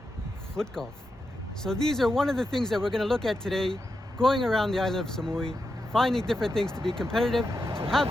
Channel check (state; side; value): normal; both; correlation 0.87